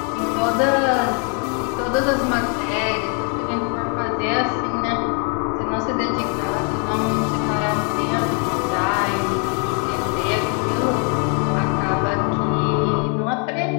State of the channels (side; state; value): right; quieter; 38.3 dB